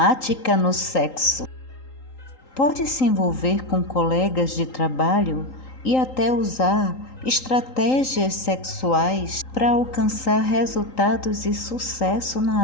no sexo. Pode se envolver com colegas de trabalho e até usar estratégias sexuais para alcançar resultados e sucesso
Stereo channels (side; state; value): right; late; 3.8 ms